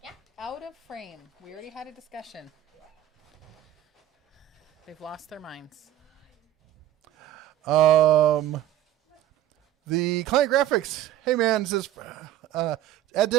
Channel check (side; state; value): left; quieter; 12.6 dB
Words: Yeah. Out of frame. We already had a discussion. They've lost their minds. The Client Graphics. Hey, man, says, at